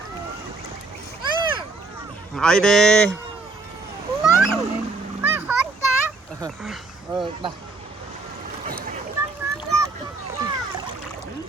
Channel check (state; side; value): quieter; left; 3.7 dB